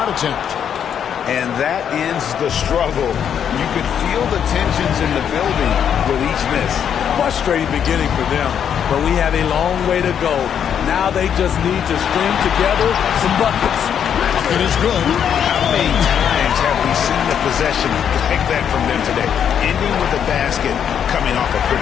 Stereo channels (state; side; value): quieter; right; 8.5 dB